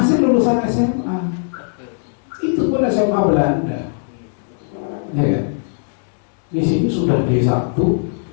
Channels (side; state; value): right; silent; digital silence